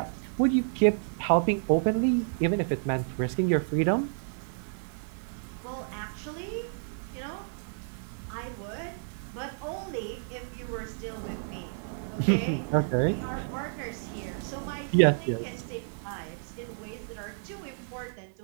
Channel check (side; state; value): left; silent; digital silence